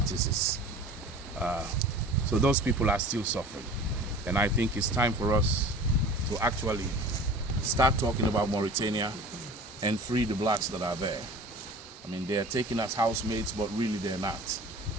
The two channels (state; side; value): normal; both; correlation 0.41